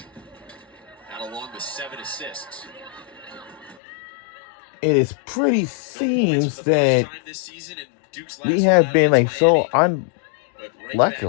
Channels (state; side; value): drops out; right; at 3.8 s